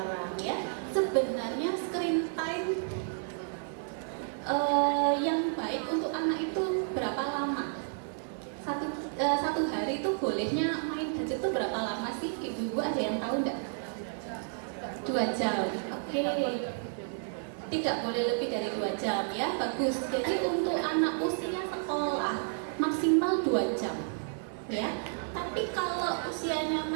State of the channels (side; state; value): left; silent; 57 dB below the other